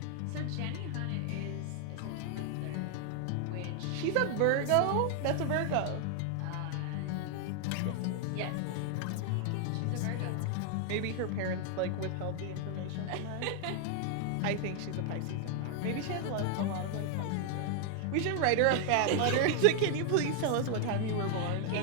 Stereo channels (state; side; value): different; both; correlation 0.00